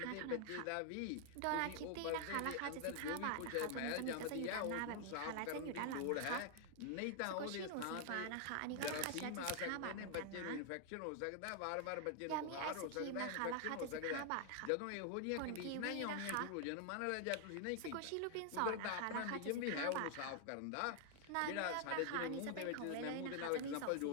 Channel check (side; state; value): both; different; correlation 0.00